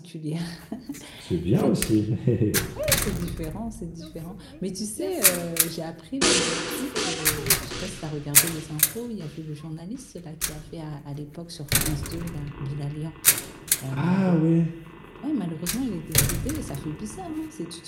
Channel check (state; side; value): identical; both; correlation 1.00